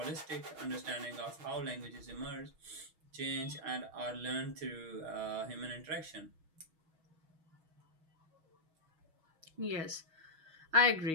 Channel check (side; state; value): left; late; 6.2 ms